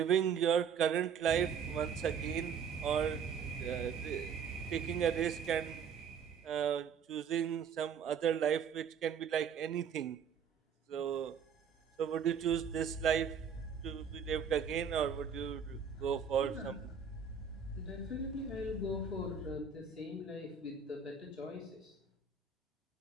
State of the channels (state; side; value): quieter; left; 6.8 dB